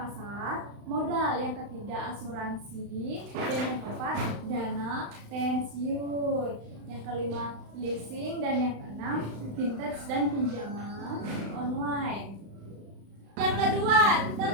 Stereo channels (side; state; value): left; late; 35 ms